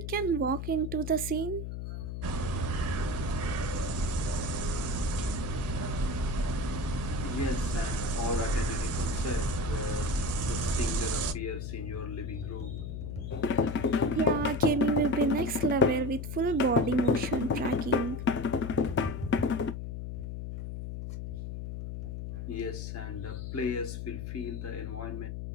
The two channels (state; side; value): noise; left; hum, 6 dB below the sound